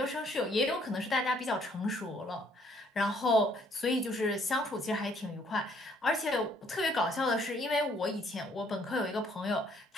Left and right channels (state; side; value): normal; both; correlation 0.64